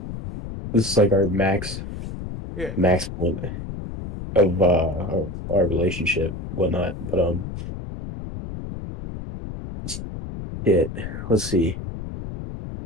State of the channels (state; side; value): noise; left; rumble, 9 dB below the sound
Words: This is like our Yeah. max point of our relationship, whatnot. But it let's see.